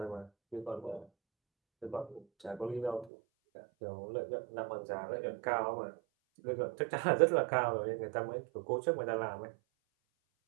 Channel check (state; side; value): drops out; left; at 3.1 s